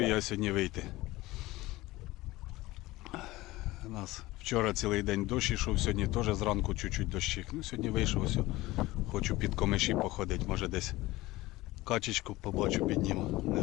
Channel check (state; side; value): quieter; right; 19.0 dB